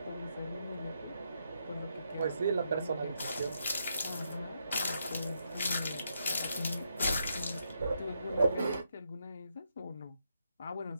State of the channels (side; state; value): both; inverted; correlation -0.78